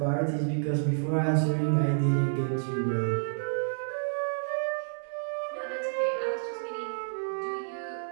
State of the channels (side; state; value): left; silent; 58 dB below the other